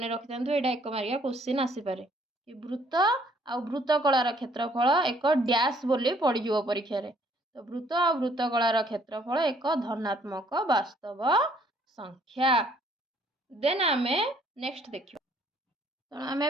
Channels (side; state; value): both; normal; correlation 0.63